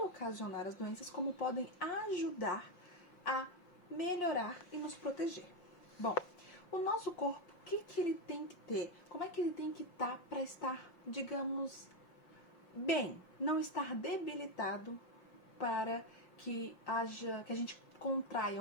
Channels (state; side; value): late; right; 5.6 ms